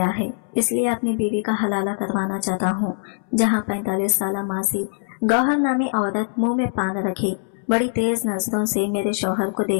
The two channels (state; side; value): silent; right; 64 dB below the other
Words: है, इसलिए अपनी बीवी का हलाला करवाना चाहता हूँ। जहाँ 45 साल मासी गौहर नामी औरत मुंह में पान रखे बड़ी तेज नजरों से मेरे शौहर को